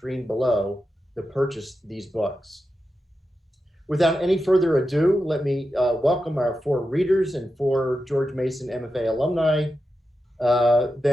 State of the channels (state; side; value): normal; both; correlation 0.90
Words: below to purchase these books. Without any further ado, let me welcome our four readers and four George Mason MFA alumni.